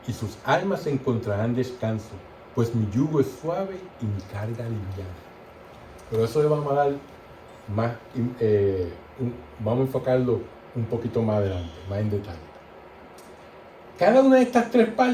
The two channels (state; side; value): identical; both; correlation 1.00